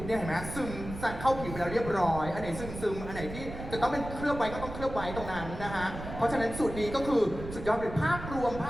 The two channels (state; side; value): noise; right; rumble, 10 dB below the sound